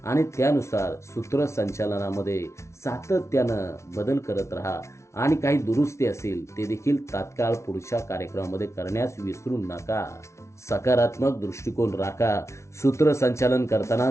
आणि त्यानुसार सूत्रसंचालनामध्ये सातत्यानं बदल करत राहा आणि काही दुरुस्ती असेल ते देखील तात्काळ पुढच्या कार्यक्रमामध्ये करण्यास विसरू नका. सकारात्मक दृष्टिकोन राखा. सूत्रसंचालन करताना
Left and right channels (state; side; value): late; right; 0.13 ms